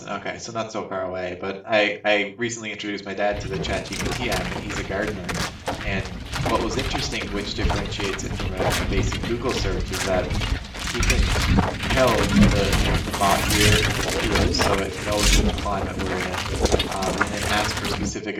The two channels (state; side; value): identical; both; correlation 1.00